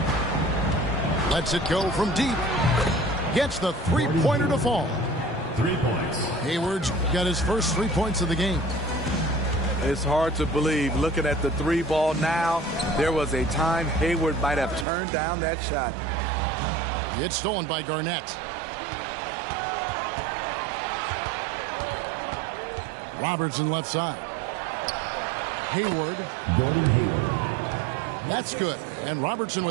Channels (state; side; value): drops out; left; at 14.9 s